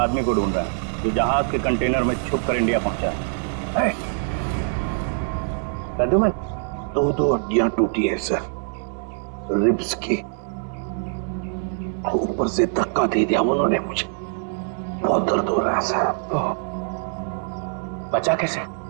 को ढूंढ रहे हैं जो जहाज के कंटेनर में छुप कर इंडिया पहुंचा है। प्रद्युमन, 2 हड्डियां टूटी है सर, रिब्स की। ऊपर से धक्का दे दिया उन्होंने मुझे, बहुत दर्द हो रहा है सर। बचा कैसे?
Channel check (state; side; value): silent; left; digital silence